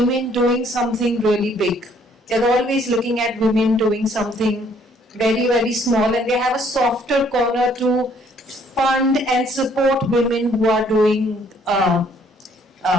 doing something really big. They're always looking at women doing something very, very small, and they have a softer corner to fund and support women who are doing,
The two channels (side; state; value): both; normal; correlation 0.63